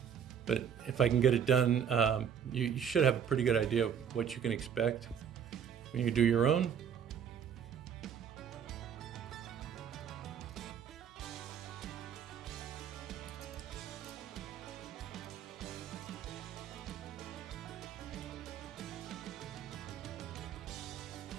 But if I can get it done, you should have a pretty good idea of what you can expect when you do your own.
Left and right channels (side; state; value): left; quieter; 8.1 dB